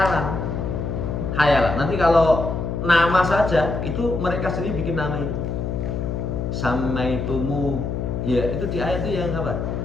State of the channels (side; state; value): left; noise; hum, 3 dB below the sound